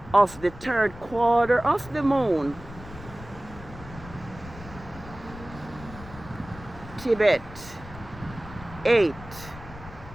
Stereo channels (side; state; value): left; noise; rumble, 15 dB below the sound